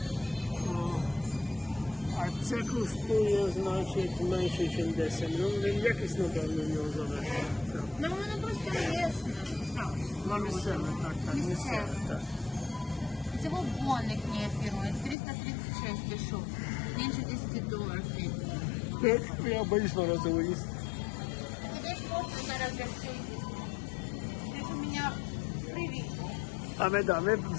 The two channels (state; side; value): drops out; right; at 15.2 s